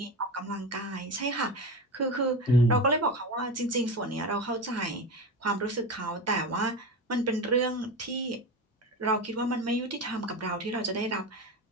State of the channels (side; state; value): both; normal; correlation 0.23